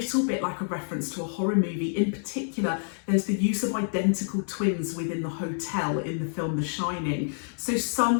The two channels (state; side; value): silent; right; 60 dB below the other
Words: bit like a reference to a horror movie. In particular, there's the use of identical twins within the hotel in the film The Shining. So